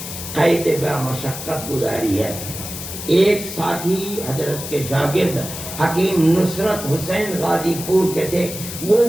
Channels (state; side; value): noise; left; hiss, 9 dB below the sound